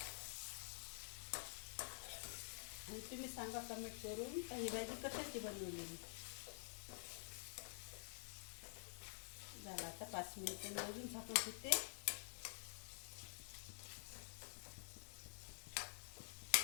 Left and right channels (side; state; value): right; silent; digital silence